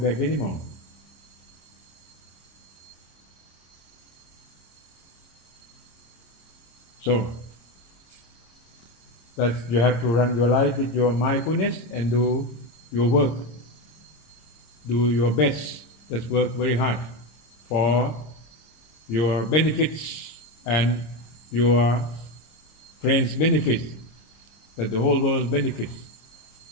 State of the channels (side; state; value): right; late; 26 ms